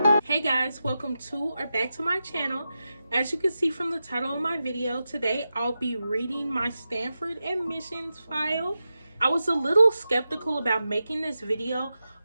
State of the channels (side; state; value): both; inverted; correlation -0.91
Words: Hey guys, welcome to or back to my channel. As you can see from the title of my video, today I'll be reading my Stanford admissions file. I was a little skeptical about making this video